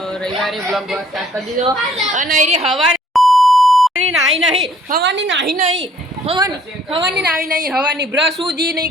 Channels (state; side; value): normal; both; correlation 0.60